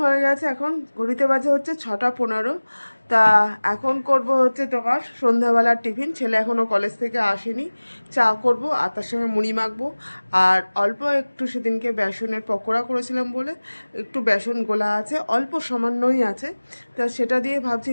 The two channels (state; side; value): inverted; both; correlation -1.00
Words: হয়ে গেছে, এখন ঘড়িতে বাজে হচ্ছে 6:15। তা এখন করব হচ্ছে তোমার সন্ধ্যাবেলার টিফিন। ছেলে এখনও কলেজ থেকে আসেনি। চা করব আর তার সঙ্গে মুড়ি মাখবো। আর অল্প একটু সেদিনকে বেসনের পকোড়া করেছিলাম বলে একটু বেসন গোলা আছে, অল্প সামান্যই আছে। তা সেটা দিয়ে ভাবছি